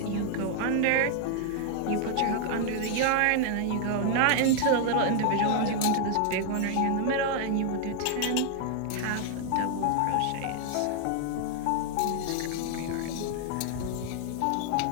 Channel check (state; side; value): different; both; correlation 0.00